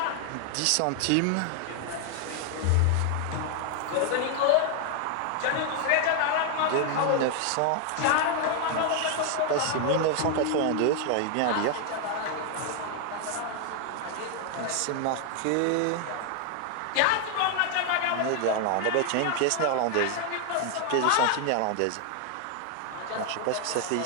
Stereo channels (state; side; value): different; both; correlation 0.00